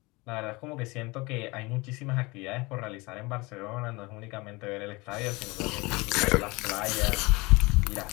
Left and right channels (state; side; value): quieter; right; 24.5 dB